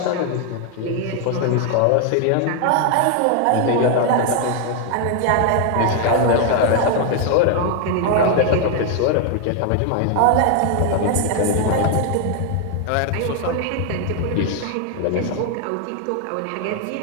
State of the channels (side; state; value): both; different; correlation 0.00